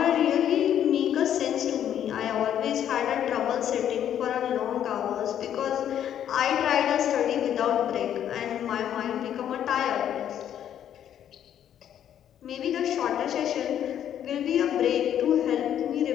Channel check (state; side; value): quieter; right; 10.1 dB